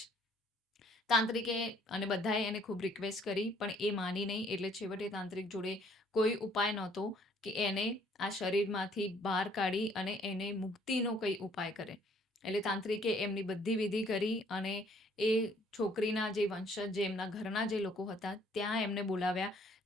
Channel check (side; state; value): both; normal; correlation 0.62